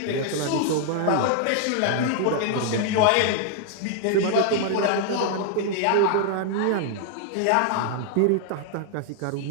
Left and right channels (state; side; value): different; both; correlation -0.01